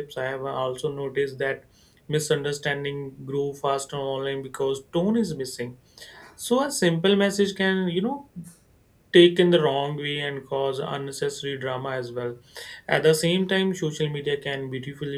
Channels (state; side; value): identical; both; correlation 1.00